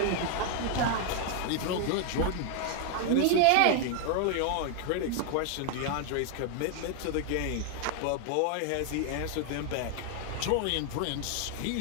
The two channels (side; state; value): both; different; correlation 0.00